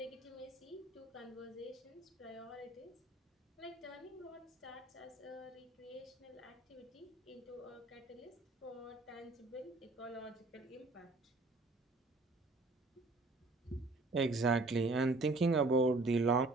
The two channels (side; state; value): left; quieter; 3.1 dB